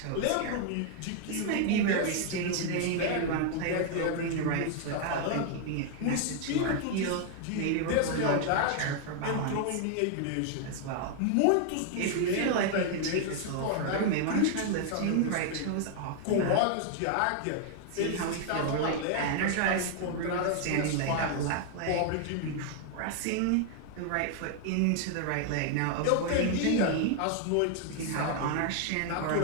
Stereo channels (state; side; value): different; both; correlation 0.00